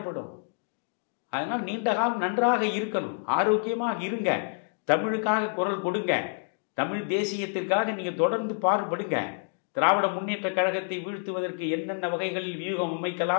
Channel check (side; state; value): right; silent; digital silence